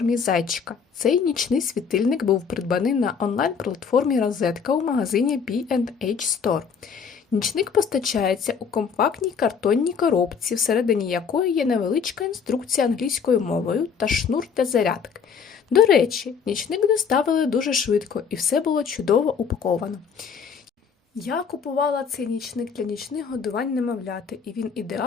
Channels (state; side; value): quieter; right; 6.4 dB